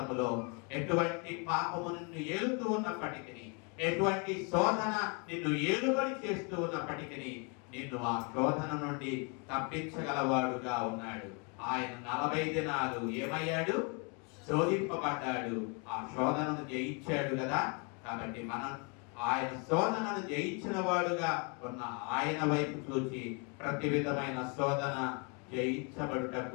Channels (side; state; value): right; quieter; 34.5 dB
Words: ఎటువంటి పాపము నిన్ను ఏలుతూ ఉన్నప్పటికీ, ఎటువంటి శోధన నిన్ను ఏలుబడి చేస్తూ ఉన్నప్పటికీ, నిన్ను ఆ శోధన నుండి తప్పించగలవాడుగా ఉన్నాడు. ఆయన 40 దినాలు ఏమయ్యాడు? శోధింపబడ్డాడు. ఆ శోధనను జయించాడు కదా. కాబట్టి మనం ఆయన శోధనను జయించిన వాడుగా ఉన్న ఆయన వైపు చూచి ప్రతి విధమైన శోధన